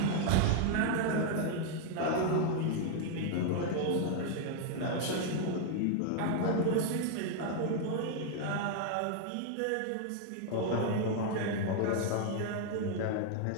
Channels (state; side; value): different; both; correlation 0.00